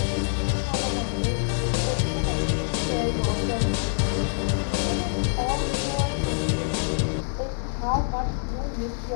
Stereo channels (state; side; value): silent; right; 61 dB below the other